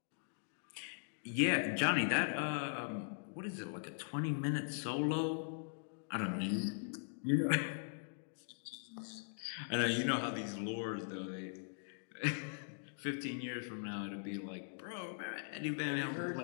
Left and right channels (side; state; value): right; silent; digital silence